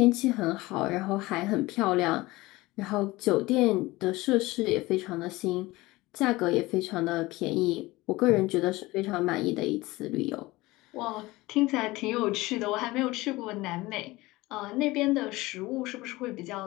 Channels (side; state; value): right; quieter; 20.2 dB